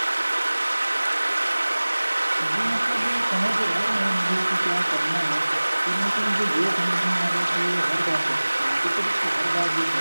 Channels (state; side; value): inverted; both; correlation -1.00